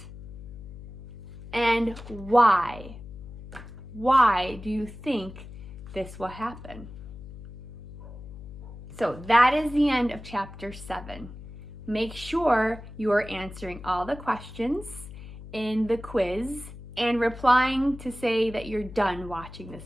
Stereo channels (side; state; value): left; noise; hum, 13 dB below the sound